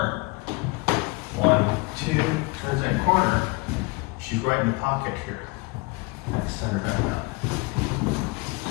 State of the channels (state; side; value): quieter; right; 25.1 dB